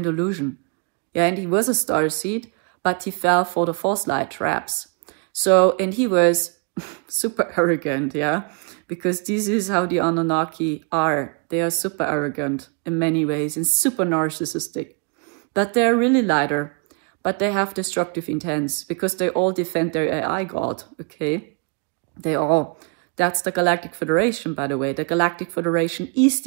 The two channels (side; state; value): left; quieter; 33.8 dB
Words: illusion. Yeah, and he was a starseed. But he fell for the false light traps. So, and he was super arrogant, yeah? Because this is how the Anunnaki are. They are super arrogant in many ways and super narcissistic. But they're really lighter. But they have destructive intents because they all defend their AI god, okay? They all. That's the Galactic Federation, by the way. The Galactic Federation is